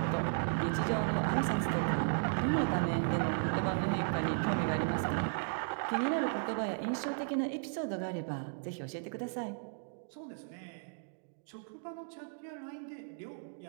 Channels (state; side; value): silent; left; digital silence